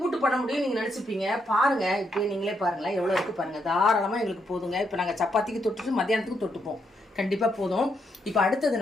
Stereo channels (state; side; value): normal; both; correlation 0.78